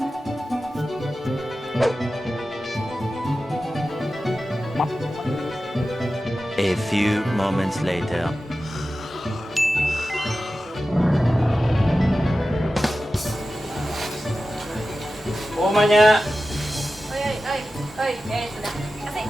A few moments later. Omanya. Oi, sudah. Kasih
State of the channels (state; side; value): normal; both; correlation 0.94